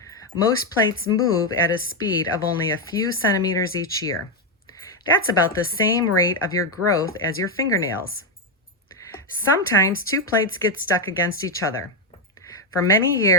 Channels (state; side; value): normal; both; correlation 0.05